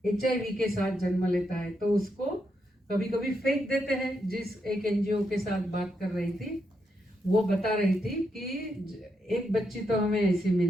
HIV के साथ जन्म लेता है, तो उसको कभी कभी फेंक देते हैं। जिस एक एनजीओ के साथ बात कर रही थी वो बता रही थी कि एक बच्ची तो हमें ऐसी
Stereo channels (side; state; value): both; normal; correlation 0.82